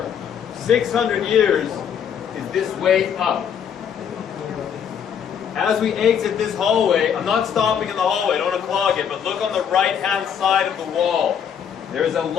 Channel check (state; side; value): quieter; right; 8.0 dB